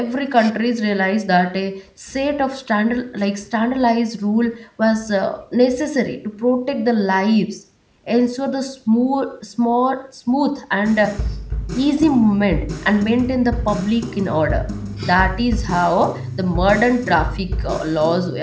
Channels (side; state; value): both; identical; correlation 1.00